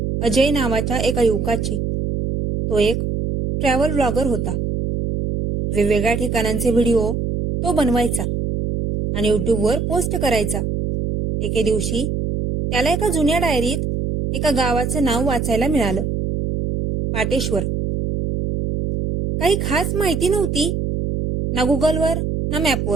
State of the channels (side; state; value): right; noise; hum, 1 dB below the sound